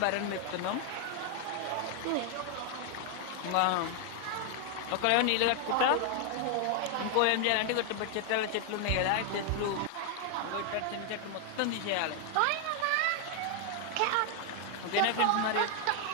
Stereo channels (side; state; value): both; different; correlation 0.00